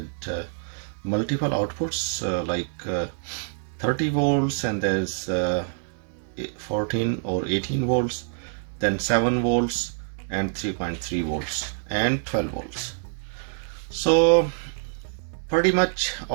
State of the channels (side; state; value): left; silent; 61 dB below the other